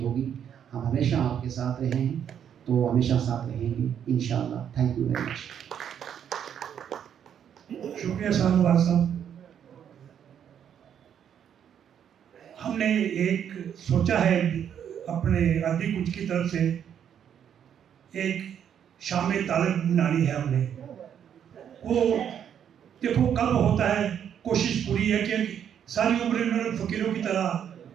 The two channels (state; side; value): quieter; left; 8.9 dB